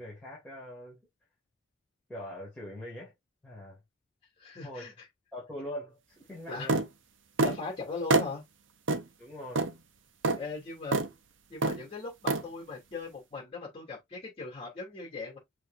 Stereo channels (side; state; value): both; normal; correlation -0.09